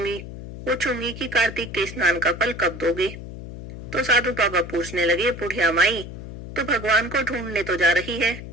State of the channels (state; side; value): noise; left; hum, 11 dB below the sound